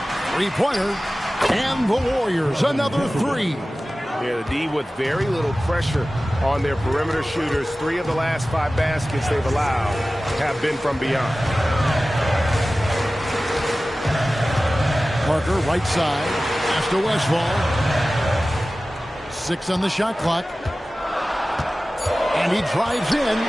Three-pointer, and the Warriors, another 3. Yeah, the D with very little pressure on their perimeter shooters. 3 of the last 5 baskets they've allowed have been from beyond. Parker, right side, pass to Westphal. 6 on the shot clock. And he drives in.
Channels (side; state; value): both; normal; correlation 0.96